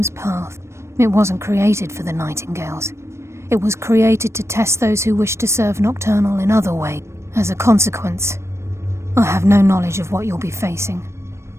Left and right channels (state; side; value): late; left; 0.13 ms